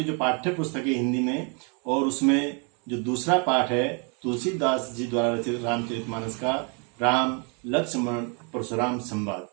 जो पाठ्य पुस्तक है हिंदी में, और उसमें जो दूसरा पाठ है तुलसीदास जी द्वारा रचित रामचरितमानस का राम लक्ष्मण परशुराम संवाद।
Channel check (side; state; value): left; quieter; 35.9 dB